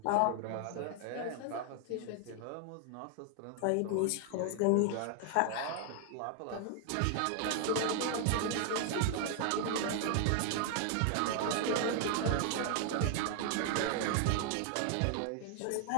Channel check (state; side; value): different; both; correlation 0.00